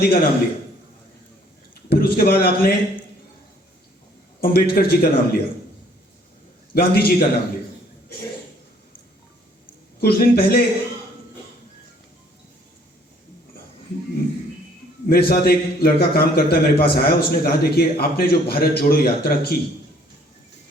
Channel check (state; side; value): normal; both; correlation 0.61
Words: का नाम लिया, फिर उसके बाद आपने अंबेडकर जी का नाम लिया, गांधी जी का नाम लिया। कुछ दिन पहले मेरे साथ एक लड़का काम करता है, मेरे पास आया, उसने कहा देखिए आपने जो भारत जोड़ो यात्रा की,